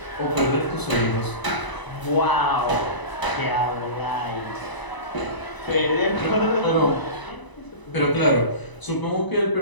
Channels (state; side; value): late; right; 1.0 ms